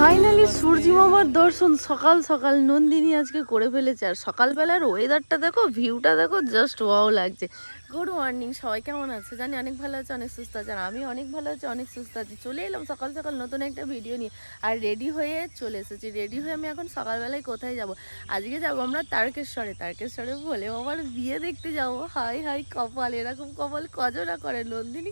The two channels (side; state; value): both; inverted; correlation -1.00